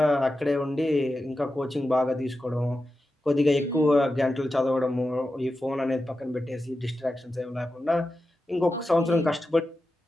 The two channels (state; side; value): normal; both; correlation 0.91